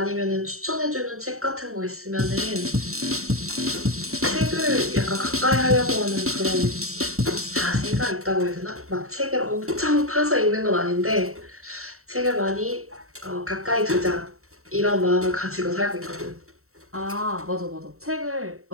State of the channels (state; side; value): late; left; 0.63 ms